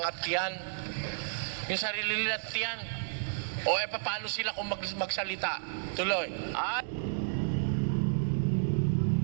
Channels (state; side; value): silent; left; digital silence